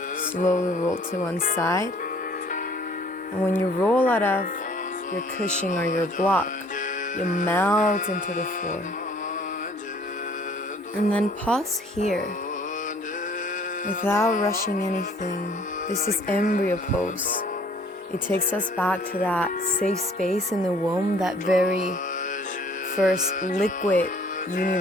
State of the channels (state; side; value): normal; both; correlation 0.57